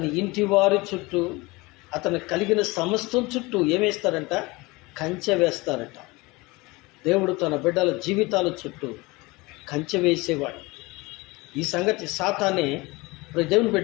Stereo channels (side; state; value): right; quieter; 23.3 dB